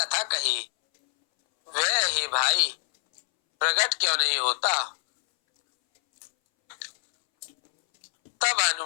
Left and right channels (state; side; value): silent; right; 62 dB below the other